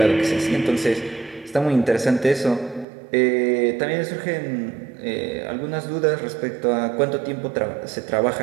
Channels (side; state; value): left; drops out; at 2.9 s